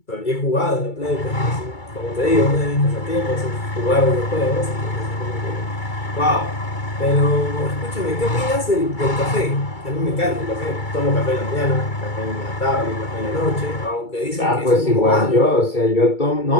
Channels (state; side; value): late; right; 2.3 ms